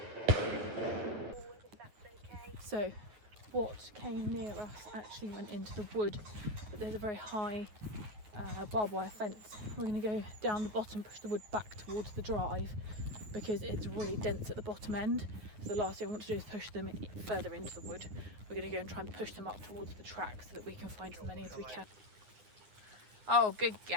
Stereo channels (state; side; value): late; left; 9.4 ms